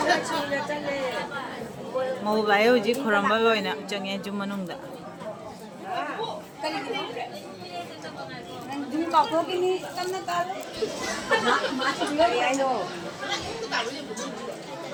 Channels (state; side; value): identical; both; correlation 1.00